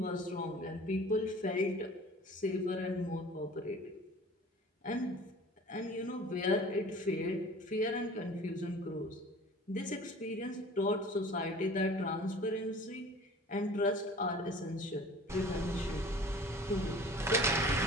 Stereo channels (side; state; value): both; normal; correlation 0.44